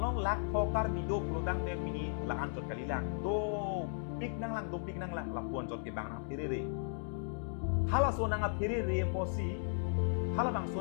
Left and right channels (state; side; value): silent; right; digital silence